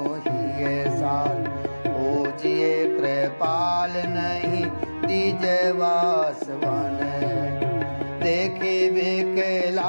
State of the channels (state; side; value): inverted; both; correlation -1.00